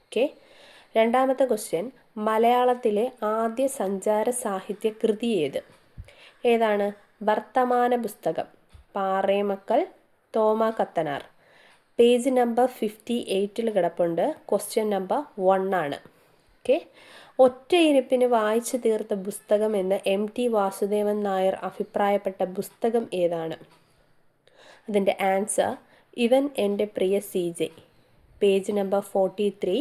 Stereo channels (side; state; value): both; identical; correlation 1.00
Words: ഓക്കെ, രണ്ടാമത്തെ ക്വസ്റ്റ്യൻ, മലയാളത്തിലെ ആദ്യ സഞ്ചാര സാഹിത്യ കൃതി ഏതാണ്? വർത്തമാന പുസ്തകം, പാറേമക്കൽ തോമ കത്തനാർ. പേജ് നമ്പർ 58 കിടപ്പുണ്ട്. ക്വസ്റ്റ്യൻ നമ്പർ 1 ആണ്. ഓക്കെ, ഒറ്റയിരുപ്പിന് വായിച്ചു തീർത്ത പുസ്തകം എന്ന് MT വാസുദേവൻ നായർ അഭിപ്രായപ്പെട്ട പുസ്തകം ഏതാണ്? അതിൻ്റെ answer Ivan Ente Priya CJ. Page number 43,